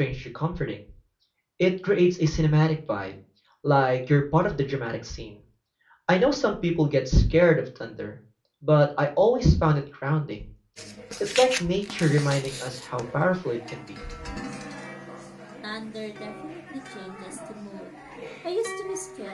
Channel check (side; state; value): both; identical; correlation 1.00